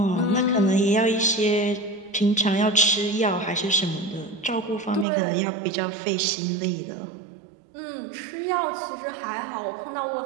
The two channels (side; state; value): left; drops out; at 5.1 s